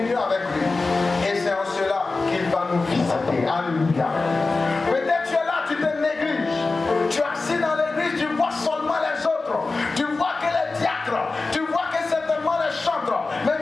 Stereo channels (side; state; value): right; quieter; 3.7 dB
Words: avec lui. Et c'est en cela qu'il va nous visiter. Alléluia. Peut-être tu es là, tu te négliges. Tu es assis dans l'église, tu vois seulement les autres. Tu vois que les diacres, tu vois que certainement les chantres. Mais